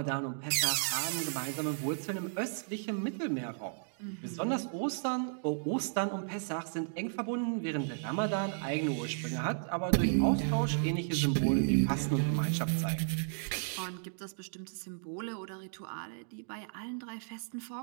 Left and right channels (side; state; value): left; silent; digital silence